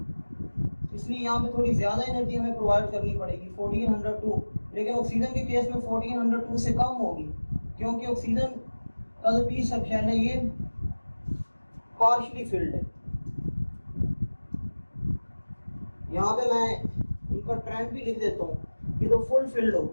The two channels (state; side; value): inverted; both; correlation -1.00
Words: इसलिए यहाँ पे थोड़ी ज़्यादा एनर्जी हमें प्रोवाइड करनी पड़ेगी 1402। लेकिन ऑक्सीजन के केस में 1402 से कम होगी क्योंकि ऑक्सीजन का जो पी सब शेल है ये पार्शियली फील्ड है। यहाँ पे मैं इनका ट्रेंड भी लिख देता हूँ कि तो फुल फील्ड